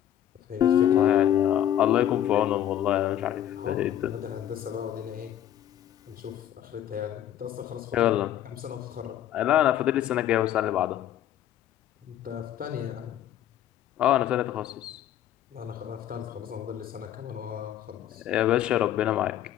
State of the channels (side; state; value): right; quieter; 11.3 dB